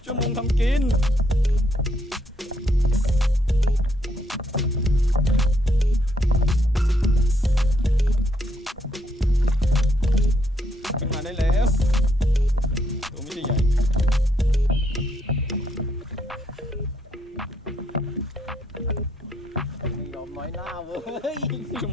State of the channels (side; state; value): both; normal; correlation 0.74